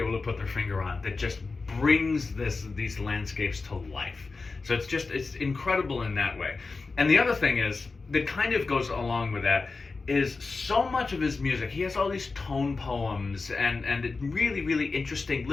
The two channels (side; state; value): right; quieter; 4.1 dB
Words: to put their finger on that just brings these landscapes to life. So it's incredible in that way. And the other thing is, that kind of goes along with that, is so much of his music, he has all these tone poems and really, really interesting